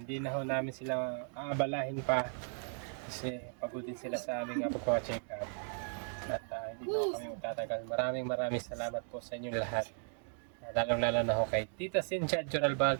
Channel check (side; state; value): left; silent; 54 dB below the other